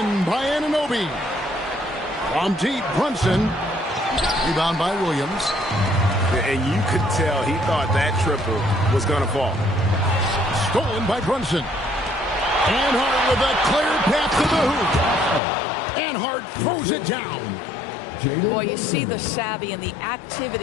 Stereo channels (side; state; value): right; drops out; at 15.4 s